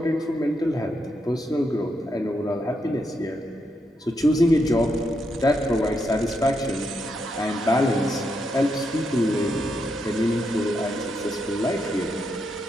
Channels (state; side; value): normal; both; correlation 0.81